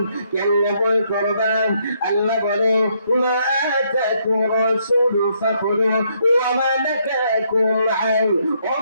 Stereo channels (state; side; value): inverted; both; correlation -0.72